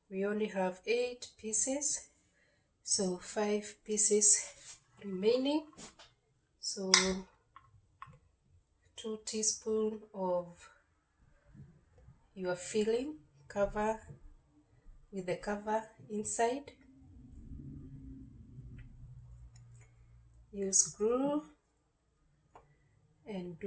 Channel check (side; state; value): both; identical; correlation 1.00